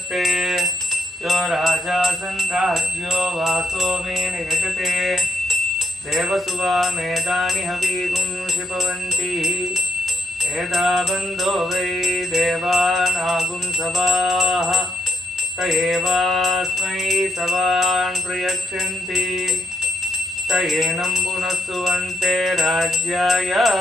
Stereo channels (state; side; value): normal; both; correlation 0.76